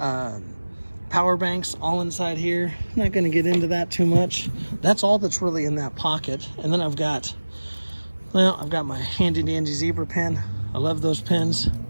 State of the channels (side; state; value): both; inverted; correlation -1.00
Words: banks all inside here. I'm not gonna get into that too much. That's all that's really in that pocket. And then I've got my handy dandy zebra pen. I love those pens.